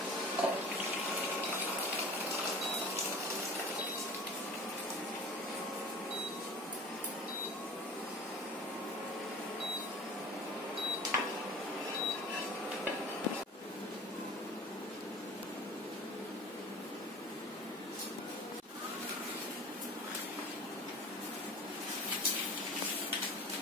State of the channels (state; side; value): normal; both; correlation 0.40